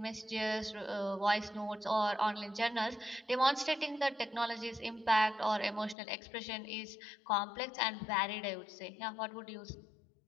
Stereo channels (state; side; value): drops out; right; at 6.0 s